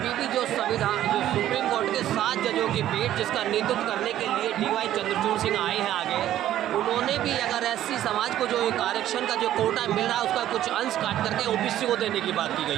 भी जो संविधान, जो सुप्रीम कोर्ट के 7 जजों की पीठ जिसका नेतृत्व करने के लिए DY चंद्रचूड़ सिंह आए हैं आगे, उन्होंने भी अगर एससी समाज को जो एक आरक्षण का जो कोटा मिल रहा है उसका कुछ अंश काट करके ओबीसी को देने की बात की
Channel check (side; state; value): left; quieter; 12.5 dB